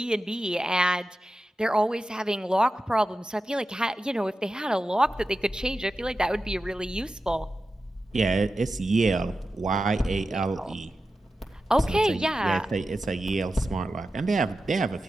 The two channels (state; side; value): normal; both; correlation 0.92